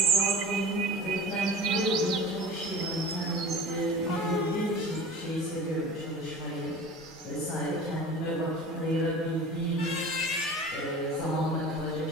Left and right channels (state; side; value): normal; both; correlation 0.37